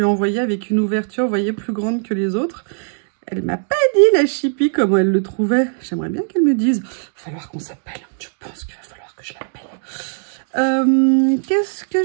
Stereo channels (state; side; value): silent; left; digital silence